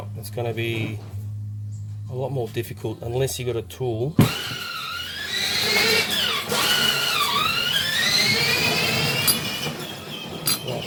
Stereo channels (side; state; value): both; identical; correlation 1.00